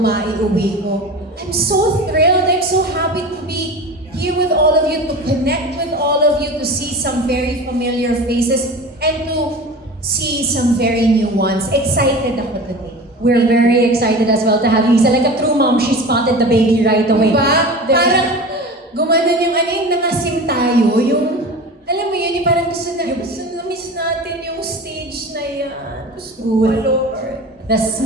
ko. I'm so thrilled. I'm so happy to be here with all of you, to connect with all of you, to see some very familiar faces, and to see some very new ones. Excited ako today. We're very excited as well to have you, Isa. Like a true mom, she spotted the baby right away. Diba? Parang gumanon yung nangasim tayo, yung, alam mo yun, yung parang gusto na miss natin yung stage na yan. Gusto ko, Lord. the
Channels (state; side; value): normal; both; correlation 0.34